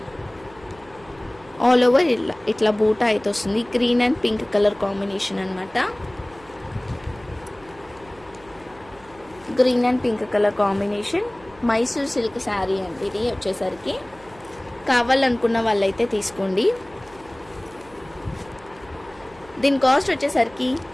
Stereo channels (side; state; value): right; noise; hum, 25 dB below the sound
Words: ఆల్ ఓవర్ ఇట్లా బూటా అయితే వస్తుంది. Green and pink colour combination అనమాట. Green and pink colour combination Mysore silk sari అండి ఇది వచ్చేసరికి. కావాలనుకున్న వాళ్ళైతే తీసుకోండి. దీని కాస్ట్ వచ్చేసరికి